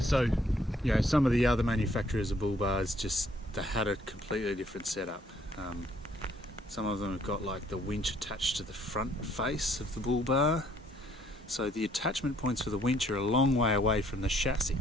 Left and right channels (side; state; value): both; normal; correlation 0.65